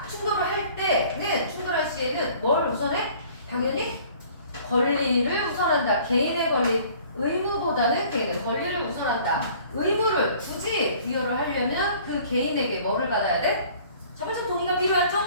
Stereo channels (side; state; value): both; inverted; correlation -0.52